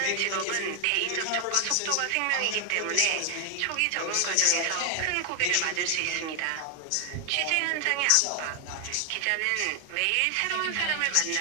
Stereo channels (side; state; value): both; different; correlation 0.00